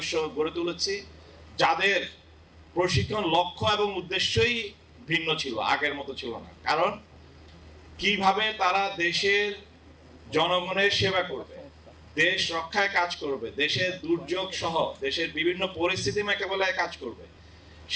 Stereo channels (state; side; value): identical; both; correlation 1.00